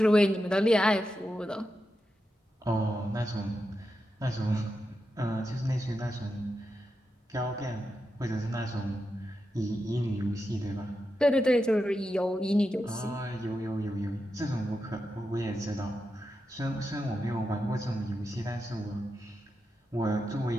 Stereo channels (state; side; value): normal; both; correlation 0.88